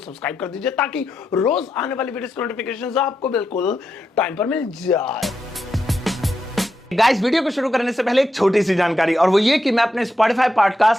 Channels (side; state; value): both; normal; correlation 0.85